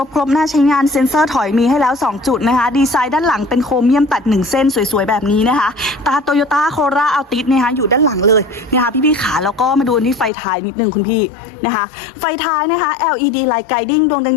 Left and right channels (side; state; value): right; drops out; at 10.3 s